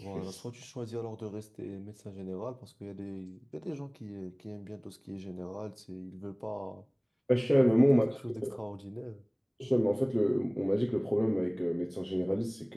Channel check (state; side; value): identical; both; correlation 1.00